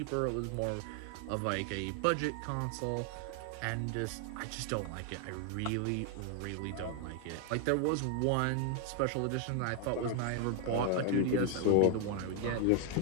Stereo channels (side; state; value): both; different; correlation 0.00